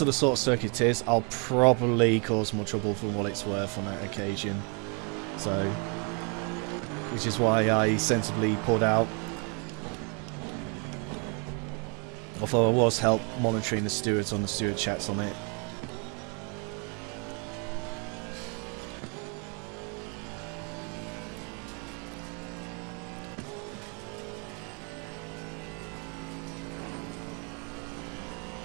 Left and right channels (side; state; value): left; quieter; 36.0 dB